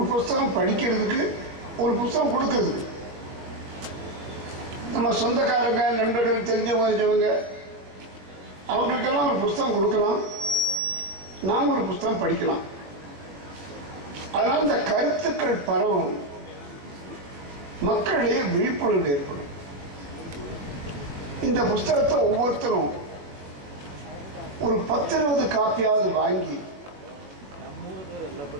ஒரு புஸ்தகம் படிக்கிறதுக்கு, ஒரு புஸ்தகம் கொடுக்கறதுக்கு. நம்ம சொந்தக்காரங்க, நண்பர்கள், தெரிஞ்சவங்க அவங்களுக்கெல்லாம் ஒரு புஸ்தகம் கொடுக்கலாம், நாம் ஒரு புஸ்தகம் படிக்கலாம். அதனால் இந்த கருத்துக்கள் பரவும், மக்களிடையே விழிப்புணர்வு ஏற்படும். இந்த புஸ்தகத்தை ஒவ்வொருத்தரும் ஒரு 10-20 காப்பியாவது வாங்கி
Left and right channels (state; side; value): late; left; 21 ms